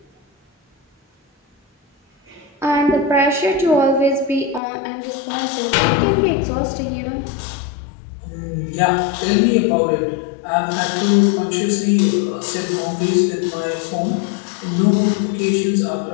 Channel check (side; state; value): right; drops out; at 4.6 s